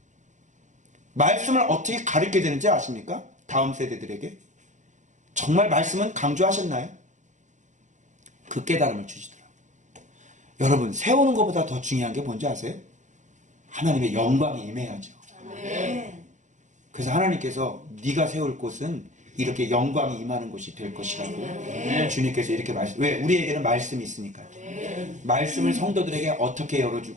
말씀을 어떻게 가르쳐야 되는지 아십니까? 다음 세대들에게. 정말 말씀은 강조하셨나요? 그 깨달음을 주시더라고요. 여러분, 세우는 것보다 더 중요한 게 뭔지 아세요? 하나님의 영광이 임해야죠. 그래서 하나님께서 네가 세울 곳은 이렇게 영광이 임하는 곳이 될 것이라고 주님께서 이렇게 왜? 우리에게는 말씀이 있으니까요. 말씀을 성도들에게 어떻게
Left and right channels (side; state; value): left; late; 0.35 ms